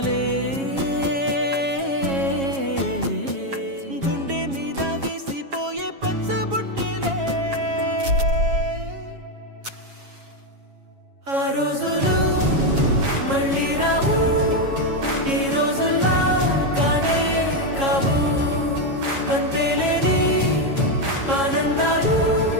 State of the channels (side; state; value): left; late; 7.3 ms